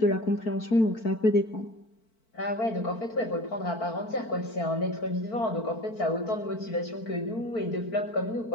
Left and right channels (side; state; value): right; late; 4.5 ms